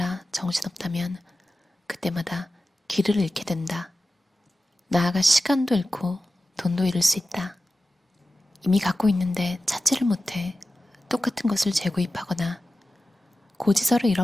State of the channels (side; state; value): both; normal; correlation 0.94